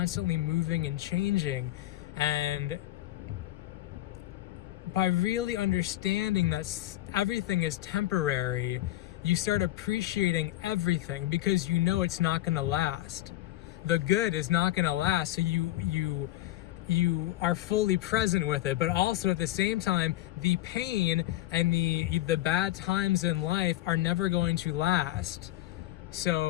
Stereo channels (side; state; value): right; quieter; 15.3 dB